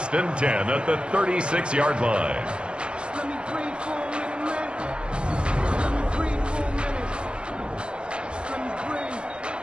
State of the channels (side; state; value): left; late; 0.056 ms